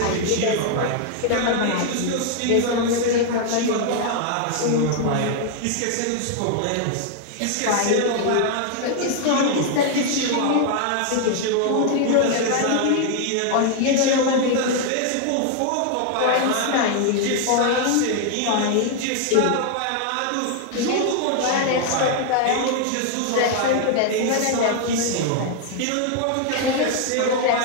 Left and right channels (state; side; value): different; both; correlation 0.00